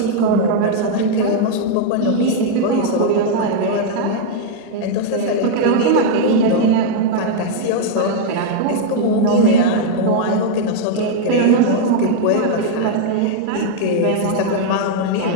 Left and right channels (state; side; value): different; both; correlation 0.00